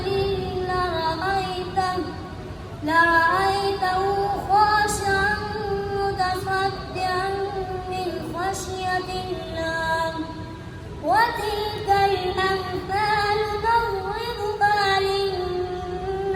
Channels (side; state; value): both; identical; correlation 1.00